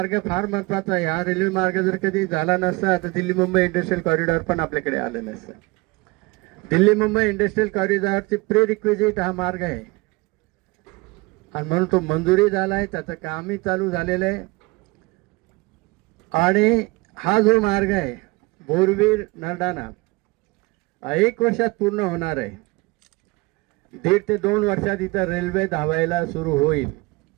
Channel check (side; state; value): left; quieter; 24.4 dB